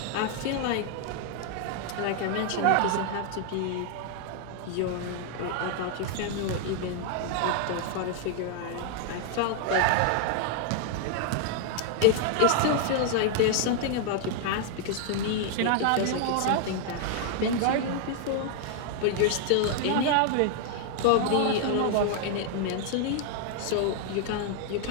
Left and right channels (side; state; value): both; different; correlation 0.00